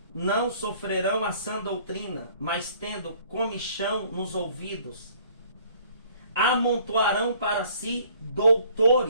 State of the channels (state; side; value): inverted; both; correlation -0.57